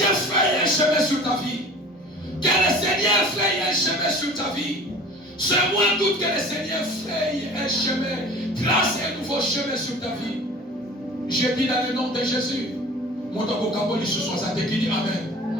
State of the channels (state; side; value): normal; both; correlation 0.43